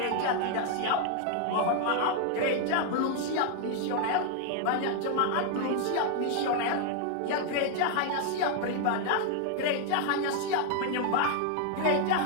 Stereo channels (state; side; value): different; both; correlation 0.00